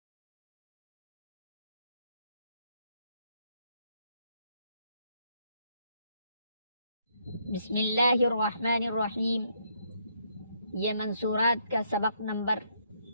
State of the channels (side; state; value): both; inverted; correlation -0.72